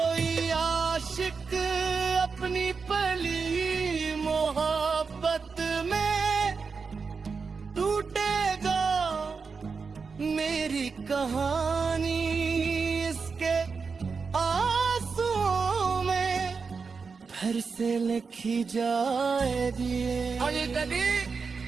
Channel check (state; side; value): quieter; left; 5.1 dB